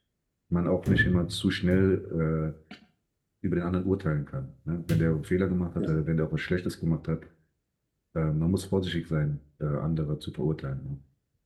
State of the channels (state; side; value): identical; both; correlation 1.00